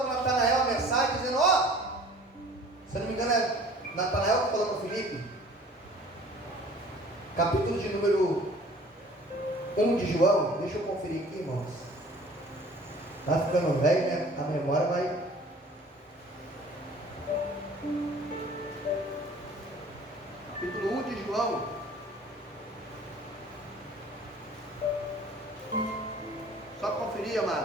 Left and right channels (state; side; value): normal; both; correlation 0.49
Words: Natanael a mensagem, dizendo, se não me engano é Natanael que falou para Filipe, capítulo de número 1 de João, deixa eu conferir aqui, irmãos, está ficando velho, né? A memória vai... Capítulo 1 de João, só conferir,